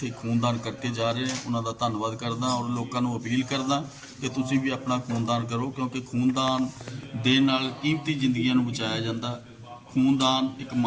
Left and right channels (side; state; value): both; identical; correlation 1.00